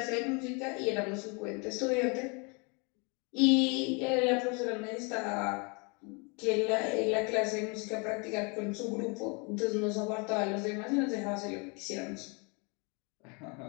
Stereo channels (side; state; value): right; quieter; 32.3 dB